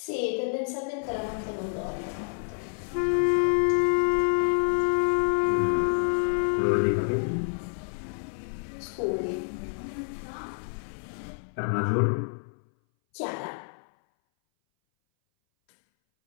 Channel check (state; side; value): silent; right; 59 dB below the other